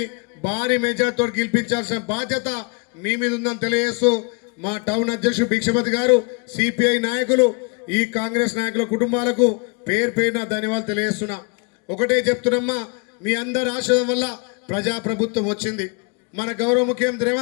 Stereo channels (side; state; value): right; quieter; 32.9 dB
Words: భారీ మెజార్టీతో గెలిపించాల్సిన బాధ్యత మీ మీద ఉందని తెలియజేస్తూ, మా టౌన్ అధ్యక్షుడు భిక్షపతి గారు, సిపిఐ నాయకులు, ఈ కాంగ్రెస్ నాయకుల కుటుంబాలకు పేరు పేరున ధన్యవాదాలు తెలియజేస్తున్నా. ఒకటే చెప్తున్నమ్మా, మీ అందరి ఆశీర్వాదం వల్ల ప్రజాప్రభుత్వం వచ్చింది. మన గౌరవ ముఖ్యమంత్రి